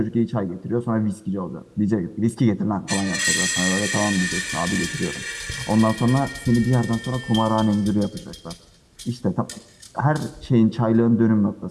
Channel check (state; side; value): identical; both; correlation 1.00